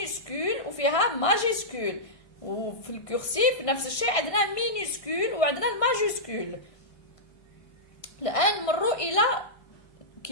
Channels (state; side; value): late; right; 1.5 ms